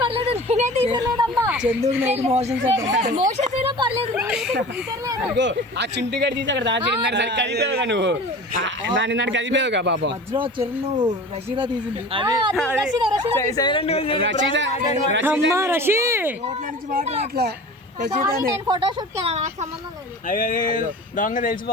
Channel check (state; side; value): normal; both; correlation 0.37